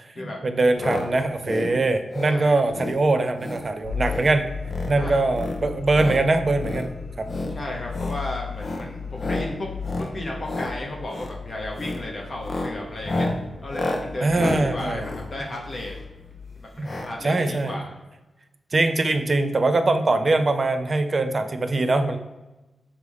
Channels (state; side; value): normal; both; correlation 0.92